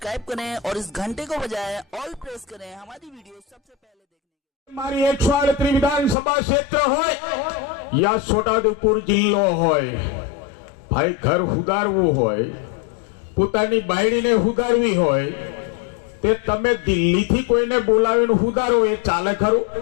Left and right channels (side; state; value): right; drops out; at 6.2 s